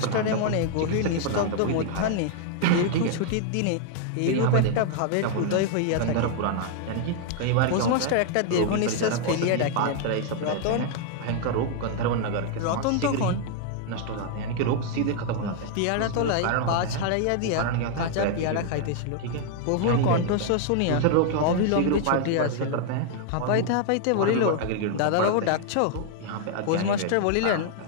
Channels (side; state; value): both; different; correlation 0.00